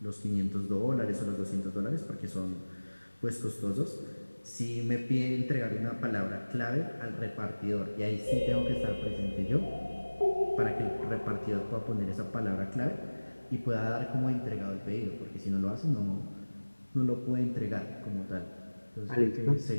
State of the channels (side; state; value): both; inverted; correlation -1.00